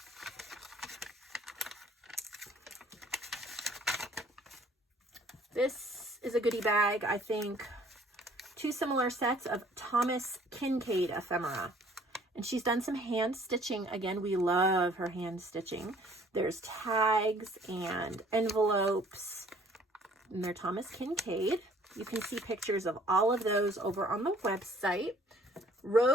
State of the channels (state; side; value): normal; both; correlation 0.57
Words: This is a goodie bag, I think. 2 similar sets of Thomas Kincaid ephemera. And she's done some hand stitching. Again, we love her hand stitching. There's tags and envelopes. And they're Thomas Kincaid. You can see pictures of all of those over on the website.